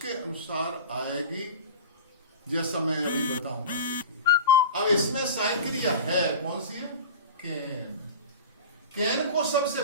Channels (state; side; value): inverted; both; correlation -0.33